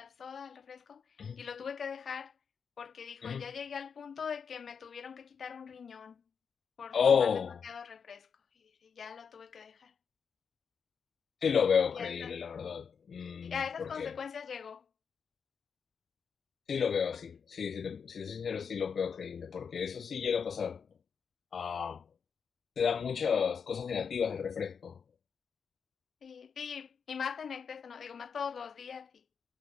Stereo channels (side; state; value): right; quieter; 6.4 dB